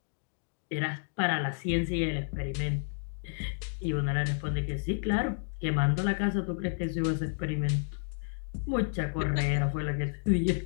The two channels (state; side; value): silent; right; digital silence